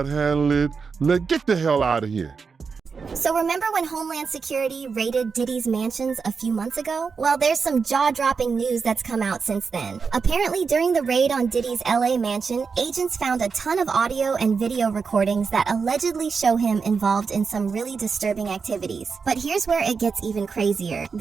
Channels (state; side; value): quieter; left; 5.3 dB